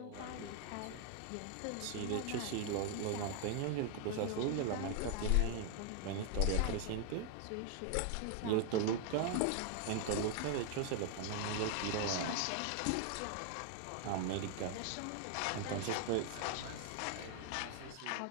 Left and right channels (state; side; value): different; both; correlation 0.00